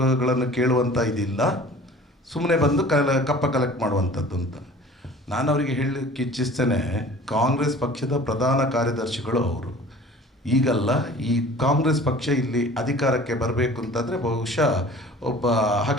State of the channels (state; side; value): normal; both; correlation 0.45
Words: ಕೇಳುವಂಥ ಇದಿಲ್ಲ, ಸುಮ್ಮನೆ ಬಂದು ಕಪ್ಪ ಕಲೆಕ್ಟ್ ಮಾಡುವಂಥದ್ದು ಅಂತ. ನಾನು ಅವರಿಗೆ ಹೇಳಲಿಕ್ಕೆ ಇಚ್ಛಿಸ್ತೇನೆ, ಕಾಂಗ್ರೆಸ್ ಪಕ್ಷದ ಪ್ರಧಾನ ಕಾರ್ಯದರ್ಶಿಗಳು ಅವರು. ಈಗಲ್ಲ, ಈ ಕಾಂಗ್ರೆಸ್ ಪಕ್ಷ ಇಲ್ಲಿ ಅಧಿಕಾರಕ್ಕೆ ಬರಬೇಕು ಅಂತಂದರೆ ಬಹುಶಃ ಒಬ್ಬ